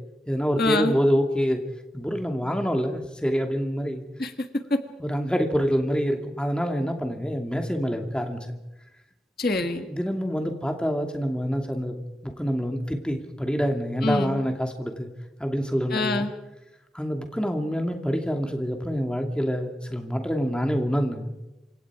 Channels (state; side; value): normal; both; correlation 0.90